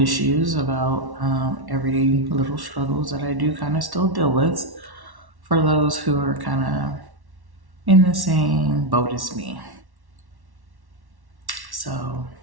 about everyday little struggles that I do kind of still deal with for those who are kind of in the same boat as me. So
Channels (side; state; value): left; late; 1.1 ms